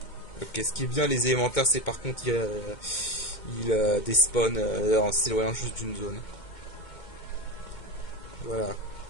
Ok, ce qui est bien, les élémentaires, c'est par contre, il despawn en s'éloignant juste d'une zone. Voilà.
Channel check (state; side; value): late; right; 2.2 ms